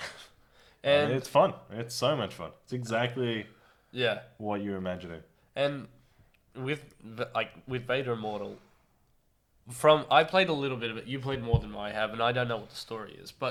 And it's fun. It's so much fun. It's exactly yeah, what you're imagining. and with Vader Immortal, I played a little bit of it. You played more than I have, and I don't know what the story is.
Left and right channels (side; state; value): both; identical; correlation 1.00